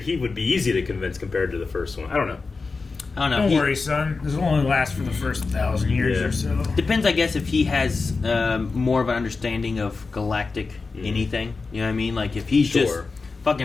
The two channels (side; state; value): right; quieter; 4.2 dB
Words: he would be easy to convince compared to the first one. I don't know. I don't know. Don't worry, son. This will only last for the first 1,000 years or so. Depends, I guess, if he has more of an understanding of galactic anything. You know what I mean? Like, if he's just